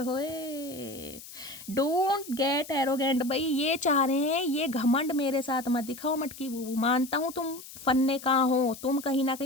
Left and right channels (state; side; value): noise; left; hiss, 15 dB below the sound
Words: होए। Don't get arrogant. भाई ये चाह रहे हैं ये घमंड मेरे साथ मत दिखाओ मटकी बूबू, मानता हूँ तुम फन्ने कहाँ हो, तुम कहीं ना